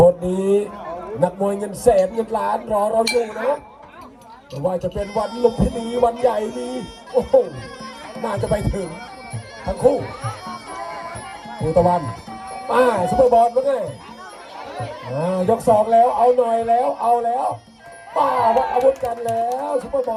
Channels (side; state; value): both; identical; correlation 1.00